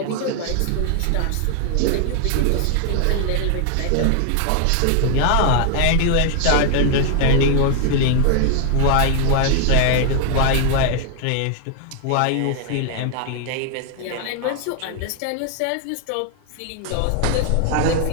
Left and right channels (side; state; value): both; different; correlation 0.00